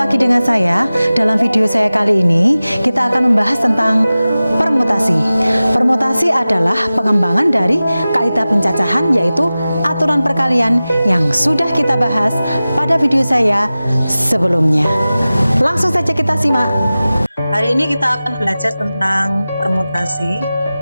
dengan saya. Dalam video saya kali ini, kita akan membahas tentang permutasi. Permutasi adalah pengembangan dari kaidah pencacahan, yaitu aturan perkalian yang sudah kita bahas pada video saya sebelumnya. Langsung saja kita simak. Hari ini kita akan belajar tentang permutasi.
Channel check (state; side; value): inverted; both; correlation -0.96